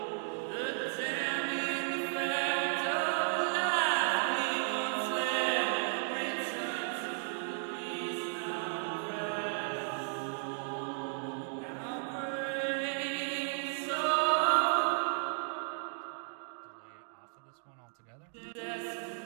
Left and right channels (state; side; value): silent; left; digital silence